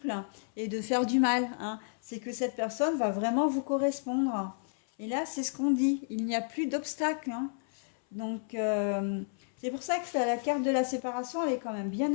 et de faire du mal, hein. C'est que cette personne va vraiment vous correspondre. Et là, c'est ce qu'on dit. Il n'y a plus d'obstacle, hein. Donc, c'est pour ça que la carte de la séparation, elle est quand même bien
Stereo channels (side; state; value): right; silent; 57 dB below the other